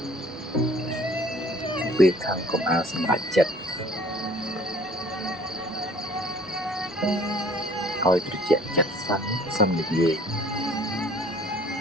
ពេលខាងកុំឲ្យសម្រេចចិត្តឲ្យត្រជាក់ចិត្តសិននិយាយ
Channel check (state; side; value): normal; both; correlation 0.53